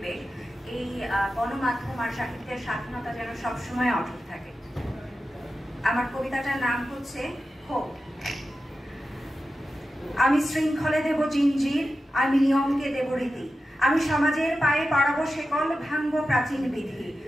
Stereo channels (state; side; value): normal; both; correlation 0.92